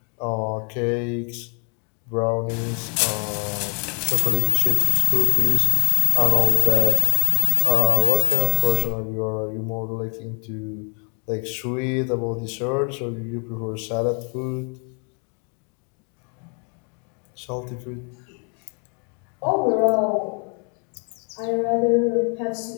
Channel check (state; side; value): quieter; right; 38.0 dB